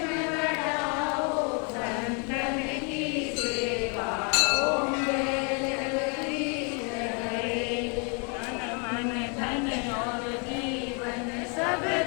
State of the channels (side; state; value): right; quieter; 36.3 dB